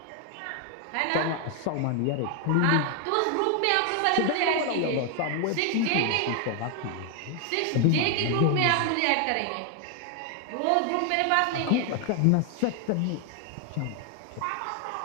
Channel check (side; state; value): both; different; correlation 0.00